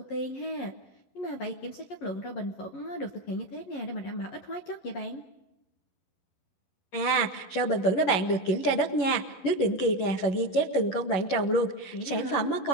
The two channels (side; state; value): right; late; 11 ms